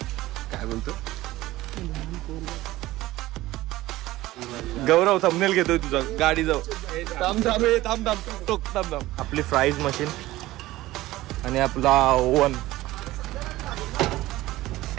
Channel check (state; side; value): quieter; left; 17.0 dB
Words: काय बोलतो गौरव थंबनेल घेतोय तुझा. गाडी जाऊ थांब. आपली फ्राईज मशीन आणि आपला ओव्हन